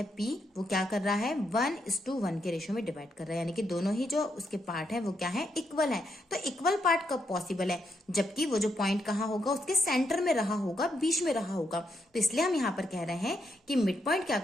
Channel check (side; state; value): both; normal; correlation 0.79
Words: P, वो क्या कर रहा है, 1:1 के रेशियो में डिवाइड कर रहा है, यानी कि दोनों ही जो उसके पार्ट है वो क्या है, इक्वल है। तो इक्वल पार्ट कब पॉसिबल है, जबकि वो जो पॉइंट कहाँ होगा, उसके सेंटर में रहा होगा, बीच में रहा होगा। तो इसलिए हम यहाँ पर कह रहे हैं कि मिड पॉइंट क्या